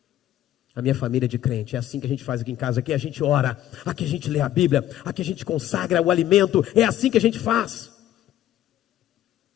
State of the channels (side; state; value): right; quieter; 12.6 dB